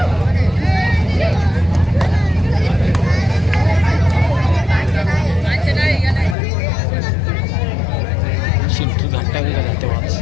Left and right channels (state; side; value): drops out; right; at 6.4 s